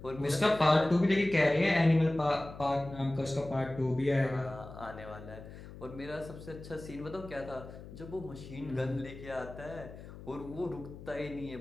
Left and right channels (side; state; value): left; noise; hum, 15 dB below the sound